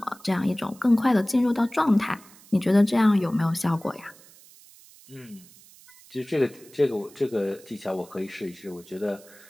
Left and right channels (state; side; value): noise; right; hiss, 24 dB below the sound